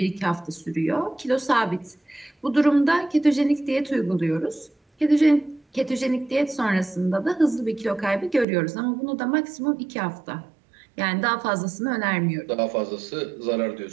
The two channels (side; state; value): left; drops out; at 8.5 s